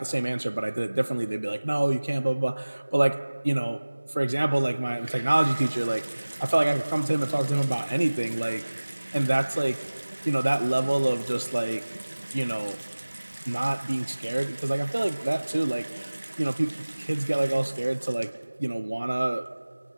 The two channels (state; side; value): inverted; both; correlation -1.00